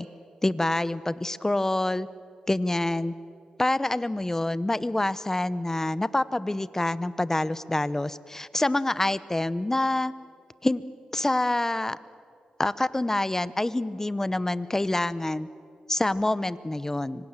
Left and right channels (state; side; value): normal; both; correlation 0.98